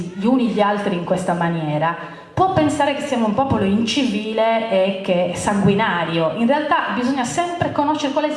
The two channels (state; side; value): identical; both; correlation 1.00